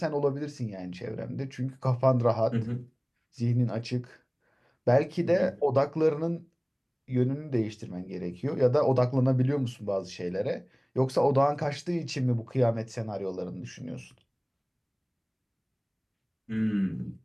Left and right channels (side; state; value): both; identical; correlation 1.00